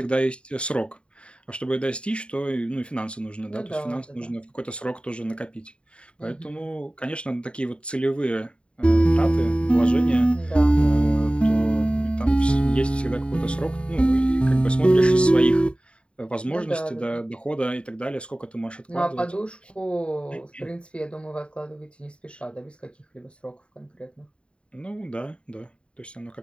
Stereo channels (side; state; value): right; late; 0.057 ms